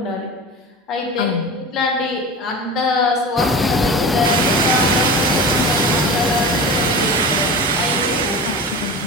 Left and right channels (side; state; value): both; normal; correlation 0.31